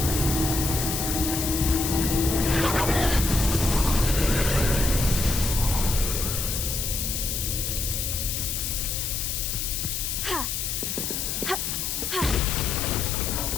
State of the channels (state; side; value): noise; left; hiss, 2 dB below the sound